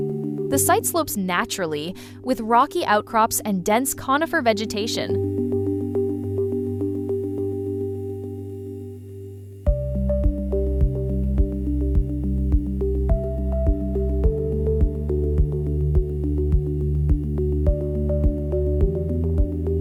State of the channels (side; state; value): both; identical; correlation 1.00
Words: The site slopes naturally, with rocky outcrops and dense conifer vegetation.